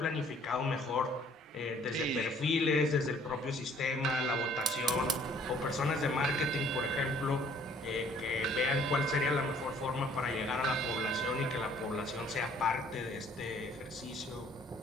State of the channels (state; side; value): normal; both; correlation 0.58